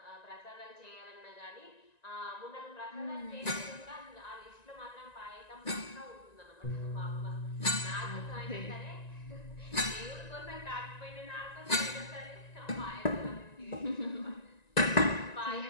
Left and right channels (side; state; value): right; late; 1.9 ms